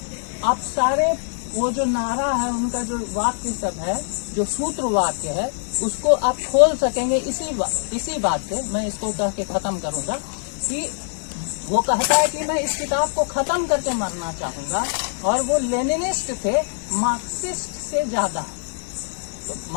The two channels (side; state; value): right; silent; digital silence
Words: आप सारे वो जो नारा है, उनका जो वाक्य सब है, जो सूत्र वाक्य है, उसको आप खोल सकेंगे इसी बात से। मैं इसको कह के खत्म करूंगा कि वो कहता है कि मैं इस किताब को खत्म करके मरना चाहूंगा, और वो लेनिनिस्ट थे, मार्क्सिस्ट से ज्यादा। तो